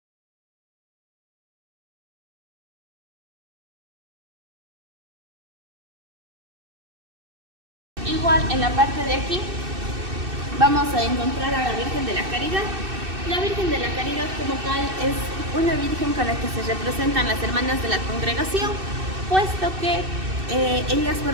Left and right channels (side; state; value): left; late; 2.6 ms